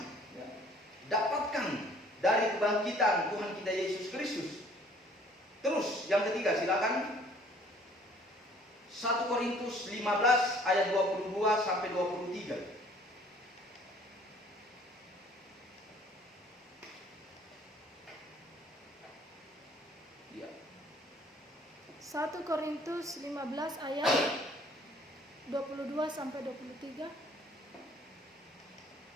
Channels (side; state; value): both; normal; correlation 0.56